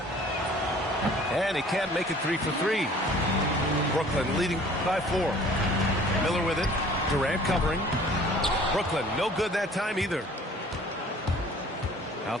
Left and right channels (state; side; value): normal; both; correlation 0.51